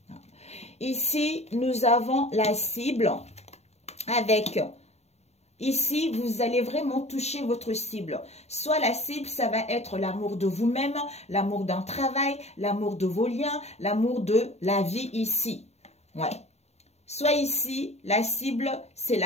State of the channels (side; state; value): right; late; 0.31 ms